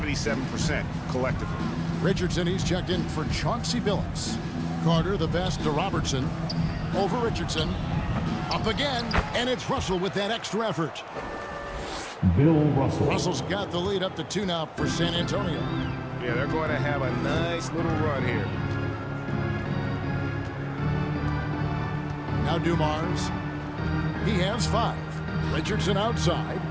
collectively. Richardson, he's checked in for Chauncey Billups. Carter, the best to Robertson. Over Richardson. Up again, and it's Russell with that extra effort. Bill Russell. Russell's got the lead up to 2 now for San Antonio. Yeah, they're going to have a nice little run here. Now Dumars. He has 5. Richardson outside.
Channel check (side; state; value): both; identical; correlation 1.00